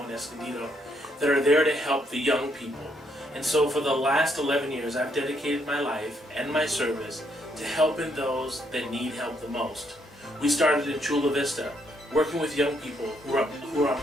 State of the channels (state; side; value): normal; both; correlation 0.73